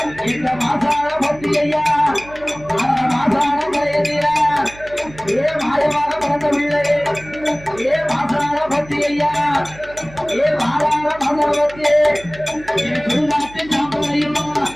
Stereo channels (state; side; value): noise; right; hum, 19 dB below the sound